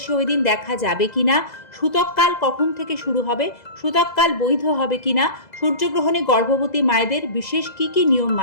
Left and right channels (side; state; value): right; late; 2.0 ms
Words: ওই দিন দেখা যাবে কিনা, সূতককাল কখন থেকে শুরু হবে, সূতককাল বৈধ হবে কিনা, সূর্যগ্রহণে গর্ভবতী মায়েদের বিশেষ কী কী নিয়ম